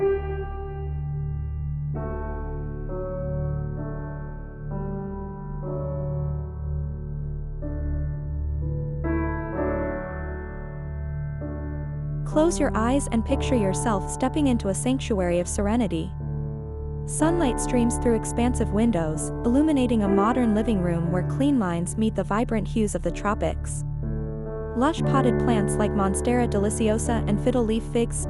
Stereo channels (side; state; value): both; identical; correlation 1.00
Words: Close your eyes and picture yourself stepping into a sanctuary of serenity. Sunlight streams through expansive windows, illuminating a modern living room where clean lines meet the vibrant hues of the tropics. Lush potted plants like Monstera deliciosa and fiddle-leaf figs